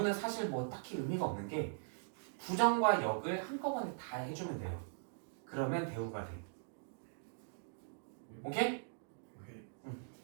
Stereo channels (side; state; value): left; silent; digital silence